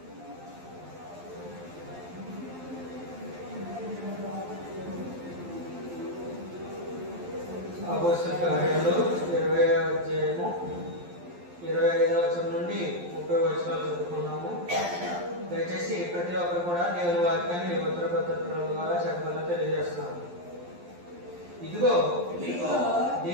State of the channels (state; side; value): late; left; 11 ms